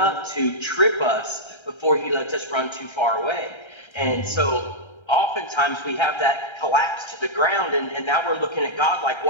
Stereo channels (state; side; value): late; right; 1.3 ms